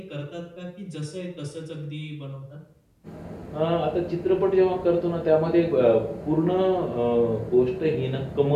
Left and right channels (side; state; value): both; identical; correlation 1.00